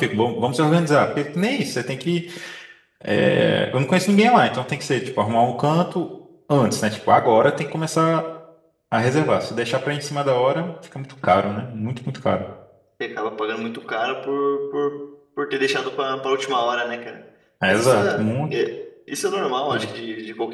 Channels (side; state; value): both; identical; correlation 1.00